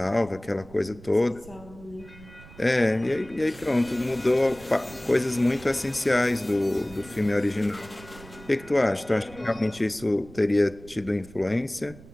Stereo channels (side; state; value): right; noise; rumble, 20 dB below the sound